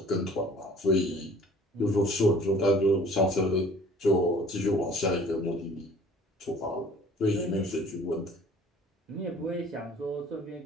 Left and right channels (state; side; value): normal; both; correlation 0.51